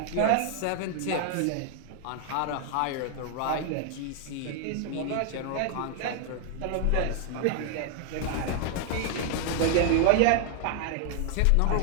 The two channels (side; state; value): both; different; correlation 0.00